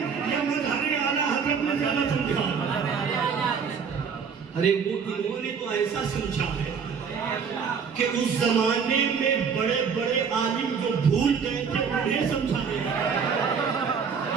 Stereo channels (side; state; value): left; quieter; 6.2 dB